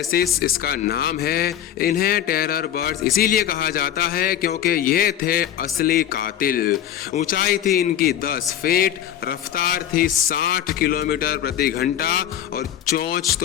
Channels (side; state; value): right; quieter; 10.7 dB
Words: इसका नाम है। इन्हें टेरर बर्ड्स इसीलिए कहा जाता है क्योंकि ये थे असली कातिल। ऊंचाई थी इनकी 10 फीट, रफ्तार थी 60 किलोमीटर प्रति घंटा और चोंच